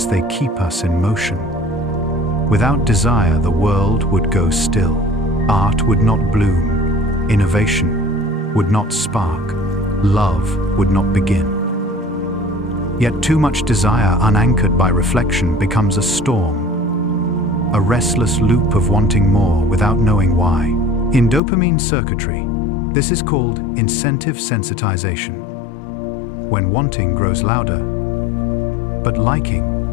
they keep us in motion. Without desire, the world would go still. Art would not bloom. Innovation would not spark. Love would not begin. Yet too much desire unanchored by reflection becomes a storm, a restless loop of wanting more without knowing why. In dopamine circuitry, this is called incentive sensitization. When wanting grows louder, but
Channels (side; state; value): right; drops out; at 21.4 s